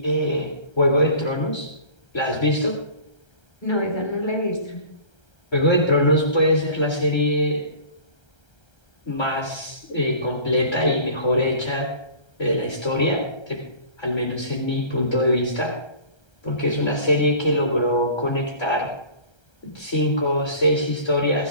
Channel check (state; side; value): late; right; 1.3 ms